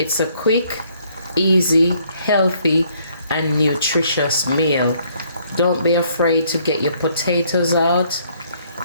a quick, easy, healthy, and nutritious meal. Don't be afraid to get your potatoes out.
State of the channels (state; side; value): inverted; both; correlation -0.66